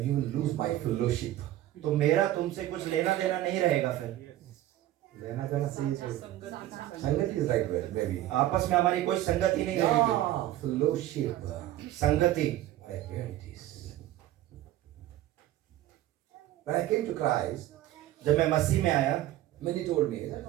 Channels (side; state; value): left; quieter; 14.2 dB